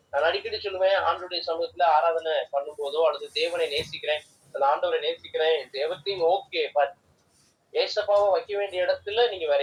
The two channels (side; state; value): both; identical; correlation 1.00